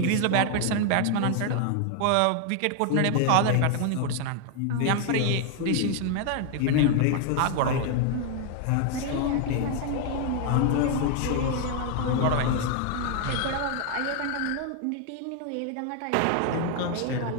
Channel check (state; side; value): different; both; correlation 0.00